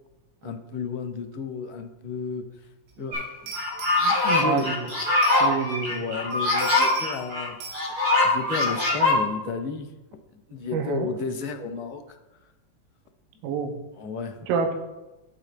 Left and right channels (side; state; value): left; late; 19 ms